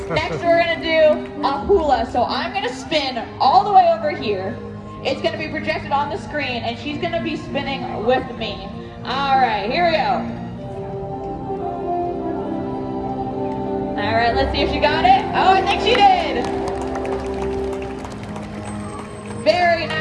Next, we're gonna do a hula. So I'm gonna spin all the way over here. It's gonna be projected on the screen and she's gonna be spinning with me. All right, here we go. All right, let's see if she got it. Oh, I think she did. Very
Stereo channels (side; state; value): both; identical; correlation 1.00